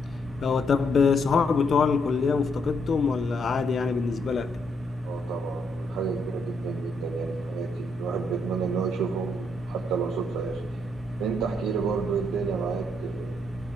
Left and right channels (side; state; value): both; normal; correlation 0.75